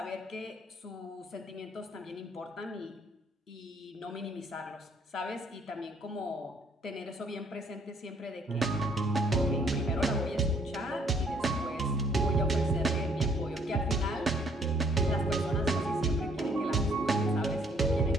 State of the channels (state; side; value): normal; both; correlation 0.64